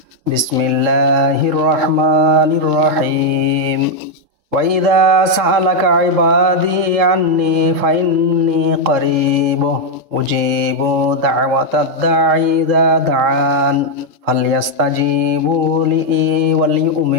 বিসমিল্লাহির রাহমানির রাহিম وَإِذَا سَأَلَكَ عِبَادِي عَنِّي فَإِنِّي قَرِيبٌ أُجِيبُ دَعْوَةَ الدَّاعِ إِذَا دَعَانِ فَلْيَسْتَجِيبُوا لِي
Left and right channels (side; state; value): left; late; 3.7 ms